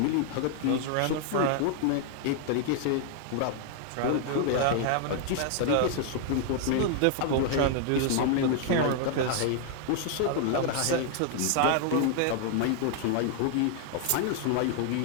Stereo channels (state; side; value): different; both; correlation 0.00